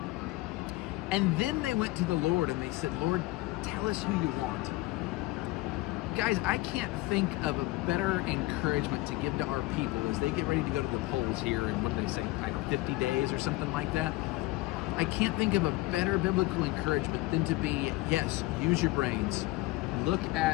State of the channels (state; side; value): quieter; right; 19.9 dB